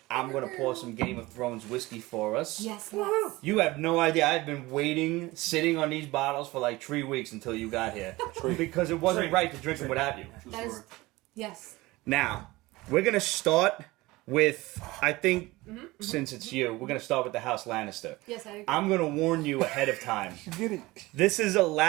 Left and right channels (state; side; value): quieter; left; 20.5 dB